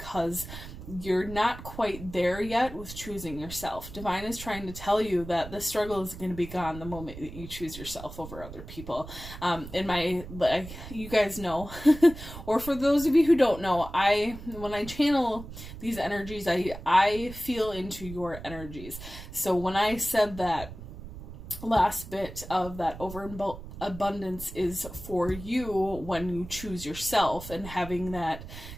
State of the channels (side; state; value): right; noise; rumble, 13 dB below the sound